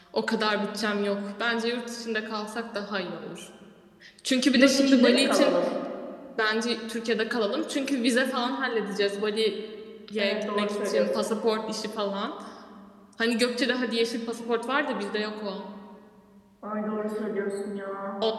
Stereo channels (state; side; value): identical; both; correlation 1.00